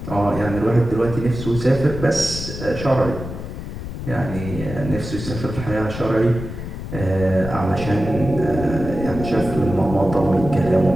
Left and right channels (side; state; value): left; noise; rumble, 8 dB below the sound